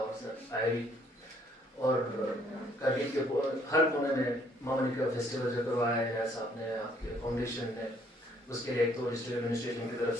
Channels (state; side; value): normal; both; correlation 0.64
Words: सर आए भी, और करगिल के हर कोने में मामनी का फेस्टिवल जो करवाया है साहब ने, आपके फाउंडेशन ने, उसके लिए एक तो डिस्ट्रिक्ट एडमिनिस्ट्रेशन की तरफ